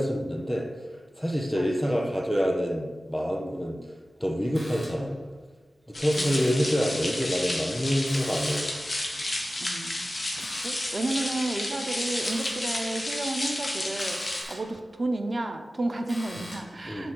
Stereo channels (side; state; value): both; normal; correlation 0.96